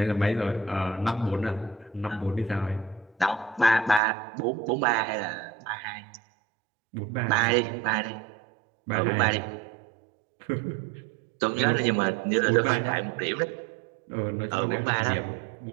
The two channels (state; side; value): drops out; left; at 4.0 s